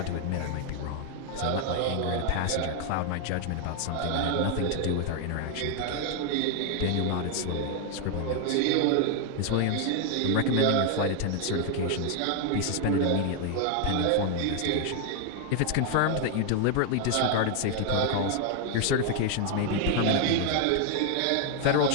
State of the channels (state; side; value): different; both; correlation 0.00